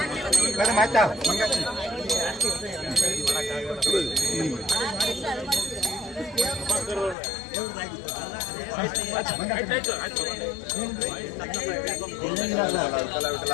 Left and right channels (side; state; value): right; drops out; at 7.2 s